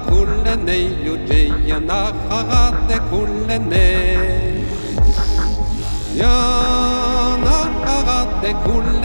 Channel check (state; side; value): inverted; both; correlation -1.00